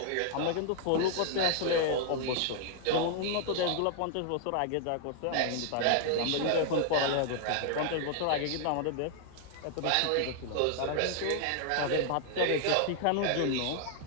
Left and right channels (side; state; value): both; different; correlation 0.00